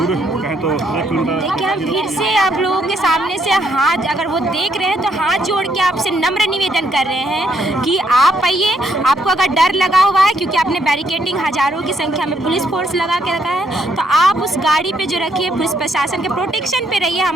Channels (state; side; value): normal; both; correlation 0.72